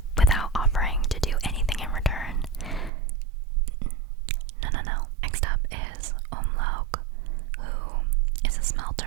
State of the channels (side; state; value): left; drops out; at 2.9 s